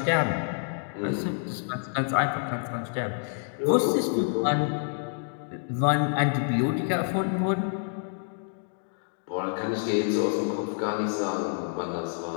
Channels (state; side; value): silent; right; 59 dB below the other